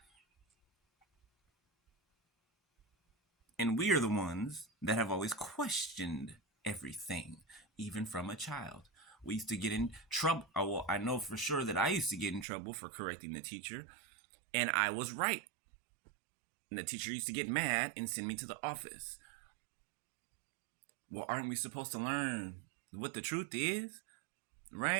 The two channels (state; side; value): drops out; left; at 12.5 s